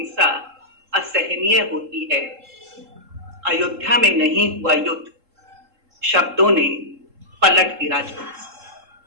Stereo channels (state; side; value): late; left; 3.7 ms